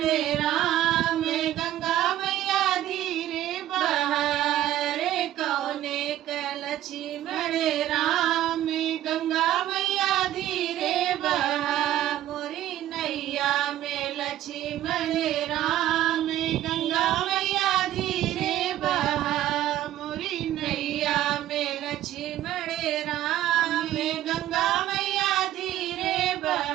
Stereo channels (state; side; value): quieter; left; 13.2 dB